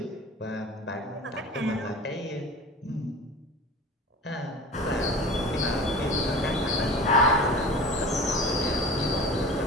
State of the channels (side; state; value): both; normal; correlation 0.36